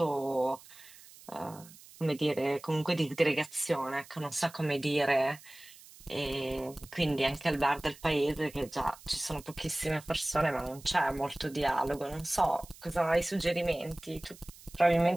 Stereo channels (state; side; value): noise; right; hiss, 21 dB below the sound